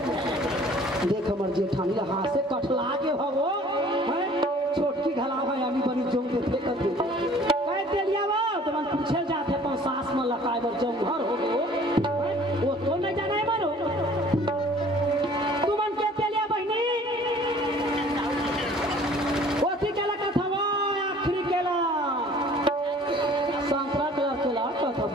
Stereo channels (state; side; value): normal; both; correlation 0.52